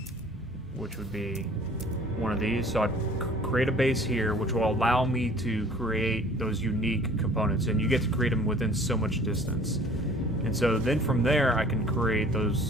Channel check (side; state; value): both; normal; correlation 0.51